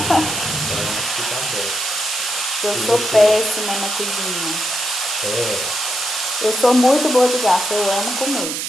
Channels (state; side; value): noise; right; hiss, 3 dB below the sound